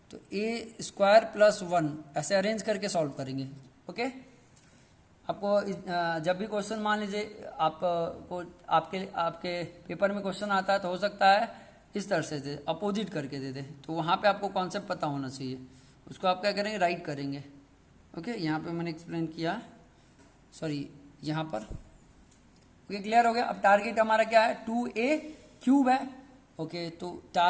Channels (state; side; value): identical; both; correlation 1.00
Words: तो ए स्क्वायर प्लस 1 ऐसे अरेंज करके सॉल्व करेंगे। ओके, आपको जब भी क्वेश्चन मान लीजिए आपको आपके पेपर में क्वेश्चन आता है तो हो सकता है इस तरह से दे, अपोजिट करके दे दे, तो वहाँ पे आपको कॉन्सेप्ट पता होना चाहिए, उसको आप क्या करेंगे, राइट करेंगे। ओके, यहाँ पे मैंने एक्सप्लेन किया, सॉरी यहाँ पर। ओके, क्लियर हो गया। अब टारगेट हमारा क्या है, 2a क्यूब है। ओके, तो